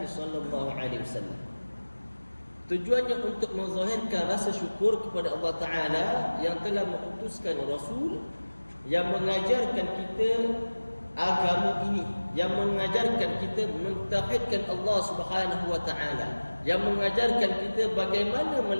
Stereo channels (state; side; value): inverted; both; correlation -1.00